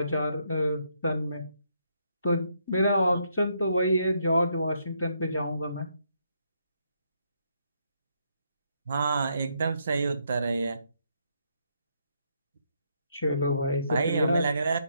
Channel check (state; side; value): inverted; both; correlation -0.75